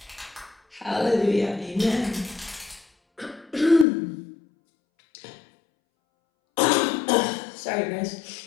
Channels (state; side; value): drops out; right; at 3.9 s